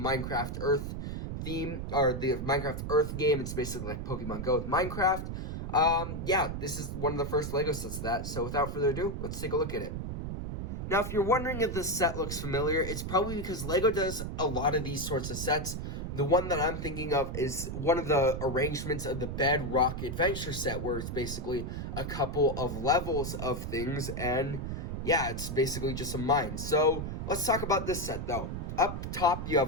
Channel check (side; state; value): right; noise; rumble, 5 dB below the sound